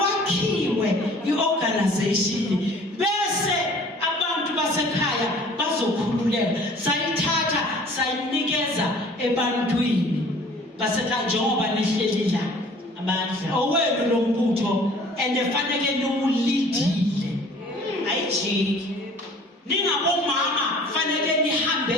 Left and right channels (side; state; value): both; normal; correlation 0.50